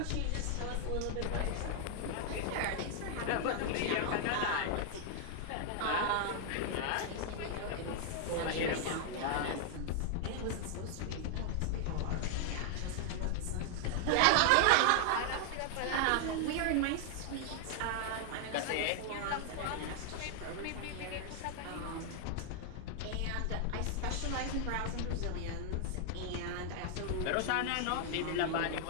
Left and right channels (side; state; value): both; different; correlation 0.00